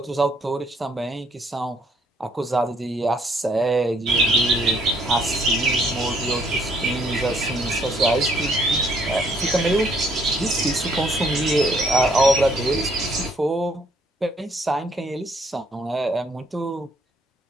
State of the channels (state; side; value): normal; both; correlation 0.67